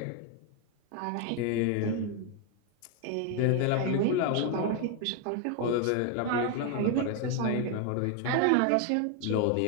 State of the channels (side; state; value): both; different; correlation 0.01